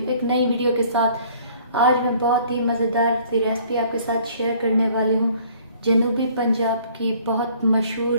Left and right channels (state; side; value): inverted; both; correlation -0.56